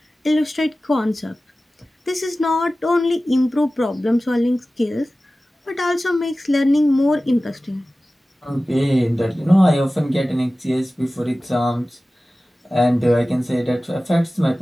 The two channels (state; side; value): normal; both; correlation 0.96